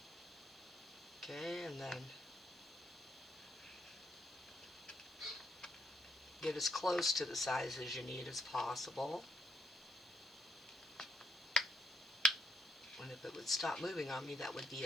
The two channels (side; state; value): both; normal; correlation 0.74